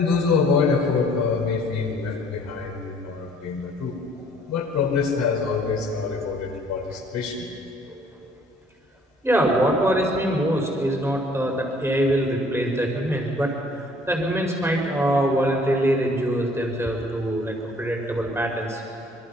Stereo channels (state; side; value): normal; both; correlation 0.58